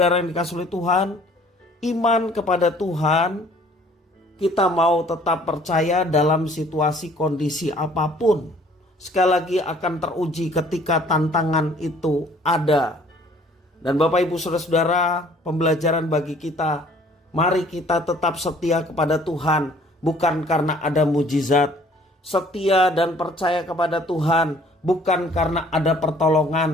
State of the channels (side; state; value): both; normal; correlation 0.56